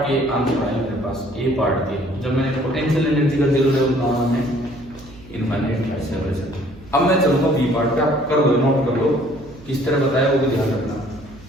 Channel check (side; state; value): right; noise; hum, 21 dB below the sound